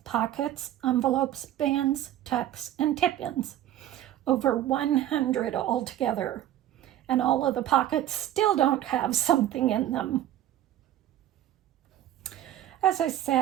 pockets, envelopes, bands, tucks, and tip-ins. Over 100 altogether. and all of the pockets still don't have something in them. As I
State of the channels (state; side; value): quieter; left; 12.5 dB